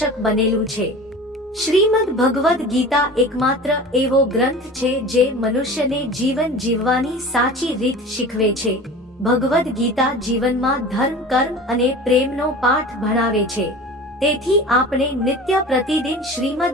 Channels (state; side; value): normal; both; correlation 0.37